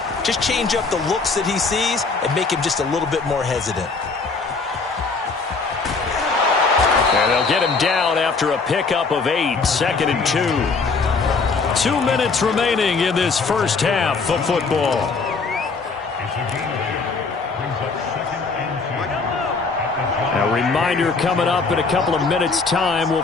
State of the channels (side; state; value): right; quieter; 4.4 dB